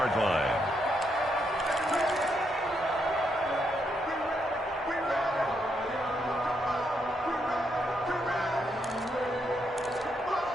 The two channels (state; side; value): normal; both; correlation 0.78